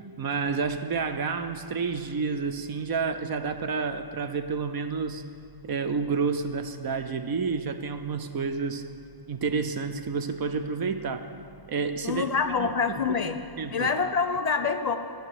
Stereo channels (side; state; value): left; late; 1.0 ms